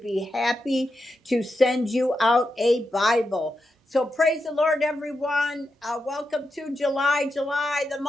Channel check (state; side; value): normal; both; correlation 0.87